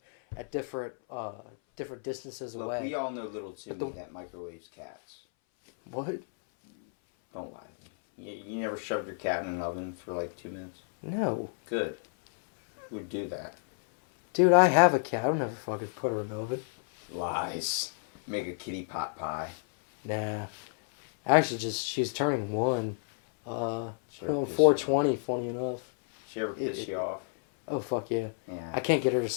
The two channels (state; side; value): silent; right; 57 dB below the other